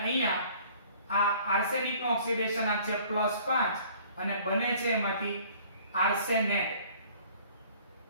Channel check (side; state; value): both; inverted; correlation -0.53